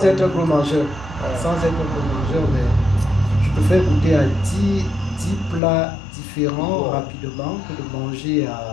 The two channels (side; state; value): right; drops out; at 5.6 s